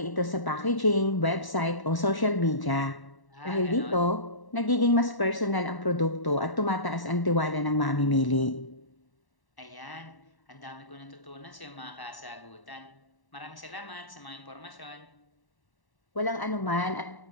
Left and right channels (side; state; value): right; late; 1.0 ms